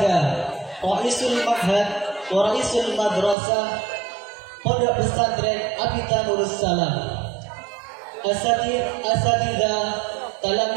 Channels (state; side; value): drops out; left; at 3.4 s